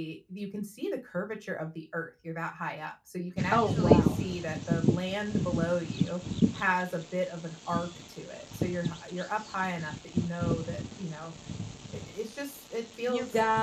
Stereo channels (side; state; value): both; identical; correlation 1.00